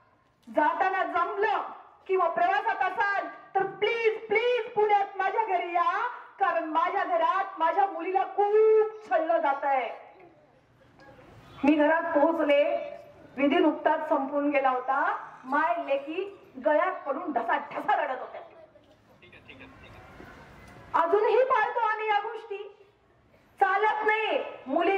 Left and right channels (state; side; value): identical; both; correlation 1.00